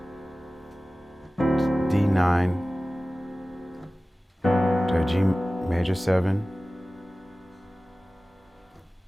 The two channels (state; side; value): normal; both; correlation 0.97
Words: to a G major 7.